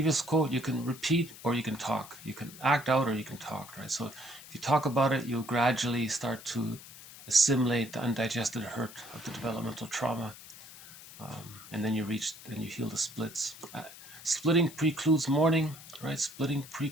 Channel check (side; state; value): left; noise; hiss, 17 dB below the sound